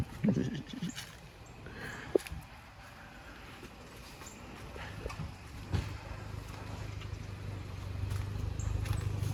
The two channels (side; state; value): both; identical; correlation 1.00